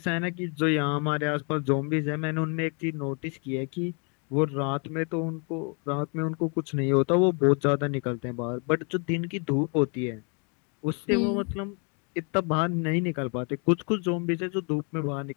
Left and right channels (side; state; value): right; quieter; 36.9 dB